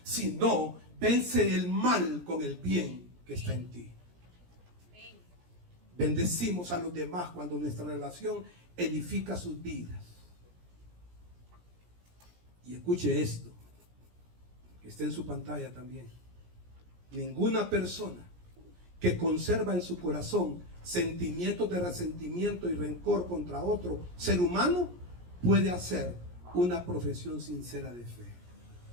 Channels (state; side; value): late; left; 17 ms